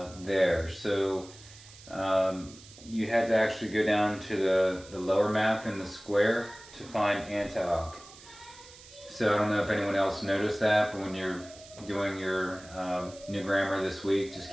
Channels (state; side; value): noise; right; hiss, 20 dB below the sound